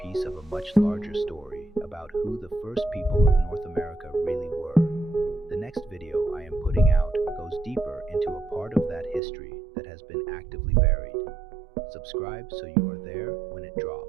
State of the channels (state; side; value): drops out; left; at 9.2 s